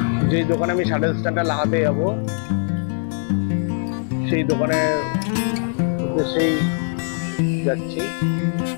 যেই দোকানে আমি শাটল স্ট্যান্ডটা লাগাতে যাবো সেই দোকানের উদ্দেশ্যেই যাচ্ছি,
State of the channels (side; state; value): right; silent; 65 dB below the other